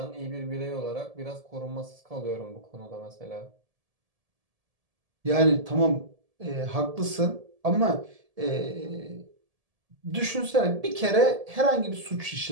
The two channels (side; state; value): left; late; 1.7 ms